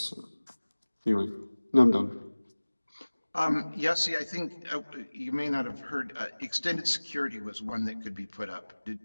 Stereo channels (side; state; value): both; inverted; correlation -1.00